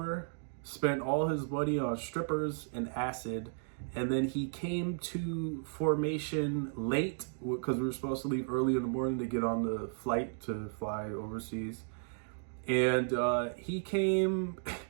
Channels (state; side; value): silent; left; digital silence